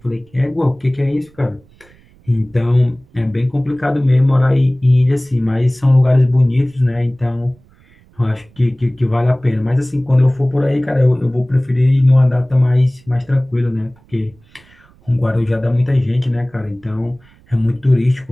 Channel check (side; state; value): right; noise; rumble, 30 dB below the sound